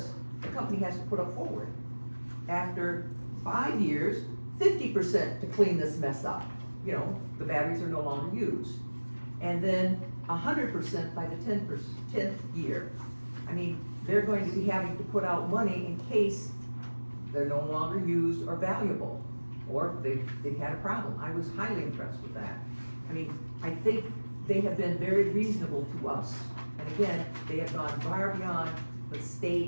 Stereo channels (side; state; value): both; inverted; correlation -1.00